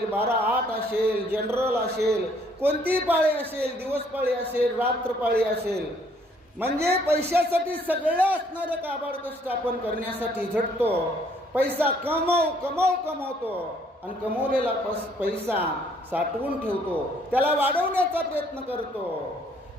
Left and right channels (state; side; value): normal; both; correlation 0.64